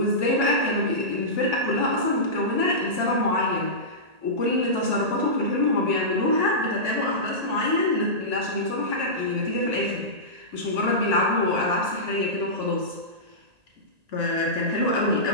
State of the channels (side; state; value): left; late; 1.8 ms